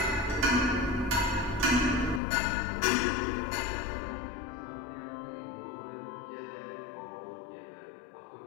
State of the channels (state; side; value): drops out; right; at 2.2 s